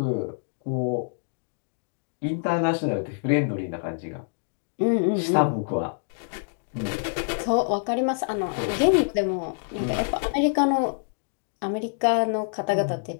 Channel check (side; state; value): right; silent; digital silence